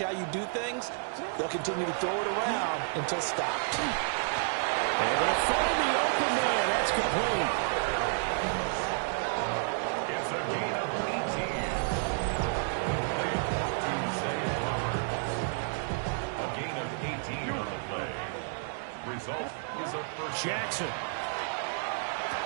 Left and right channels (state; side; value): silent; left; digital silence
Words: how you do things. They'll continue to throw it around until stopped. And they'll find the open man. That's complete. It's a gain of 18. A gain of 18 on the play. Result is a first. Jackson.